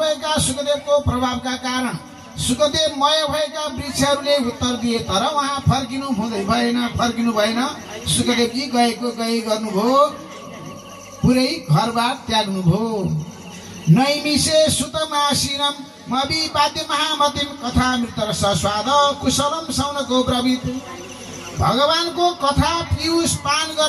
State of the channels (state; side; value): identical; both; correlation 1.00